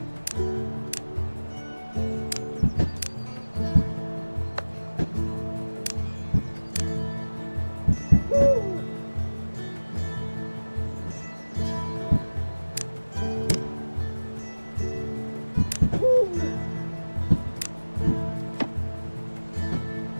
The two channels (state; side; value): inverted; both; correlation -1.00